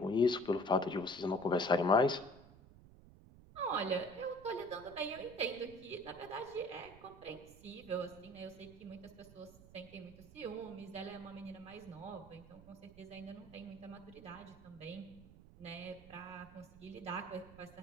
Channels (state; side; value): noise; right; rumble, 19 dB below the sound